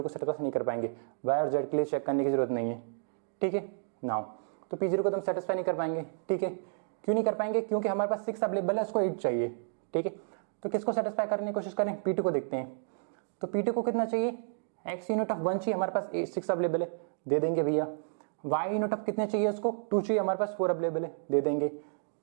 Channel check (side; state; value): left; silent; digital silence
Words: को सेटिस्फाई नहीं कर पाएंगे, y और z के लिए चेक करने की जरूरत नहीं है, ठीक है। नाउ तो P0 को तो हम सेटिस्फाई नहीं कर पाएंगे, ठीक है। क्यों नहीं कर पाएंगे, क्योंकि हमारे पास 6 अवेलेबल है, उसको 8 चाहिए, ठीक है। तो किसको सेटिस्फाई करने की कोशिश करें, P2 को देखते हैं। तो P2 को कितना चाहिए x यूनिट ऑफ 1 चाहिए, हमारे पास 6 अवेलेबल है, दे देंगे भैया। y यूनिट ऑफ कितने चाहिए उसको 2 चाहिए, हमारे पास 4 अवेलेबल है, दे देंगे।